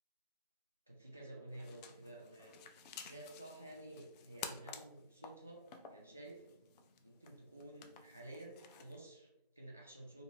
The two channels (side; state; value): both; inverted; correlation -0.41